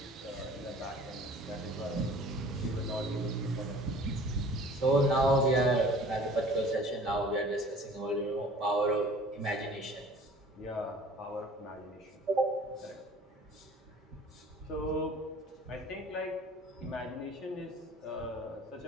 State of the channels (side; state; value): both; normal; correlation 0.47